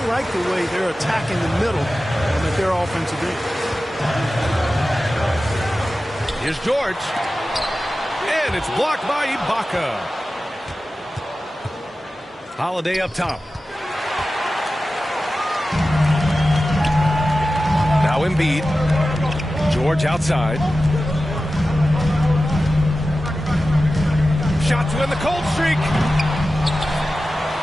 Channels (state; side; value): normal; both; correlation 0.94